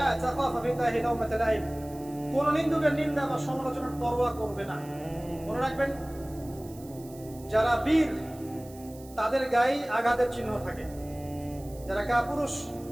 তাখাফা বিল্লাহি লাওমাতা লাইম, কোন নিন্দুকের নিন্দা বা সমালোচনার পরোয়া করবে না। মনে রাখবেন, যারা বীর তাদের গায়ে আঘাতের চিহ্ন থাকে, যারা কাপুরুষ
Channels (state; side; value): noise; right; hiss, 21 dB below the sound